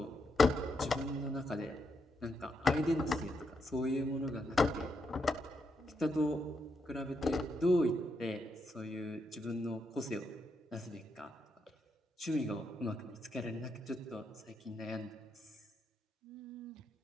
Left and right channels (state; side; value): normal; both; correlation 0.80